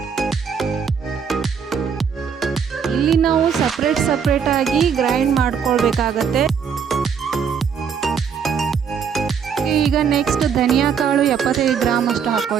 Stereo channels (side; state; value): left; quieter; 6.9 dB